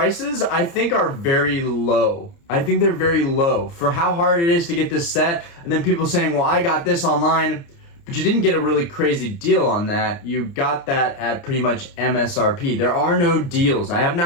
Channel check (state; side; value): late; right; 29 ms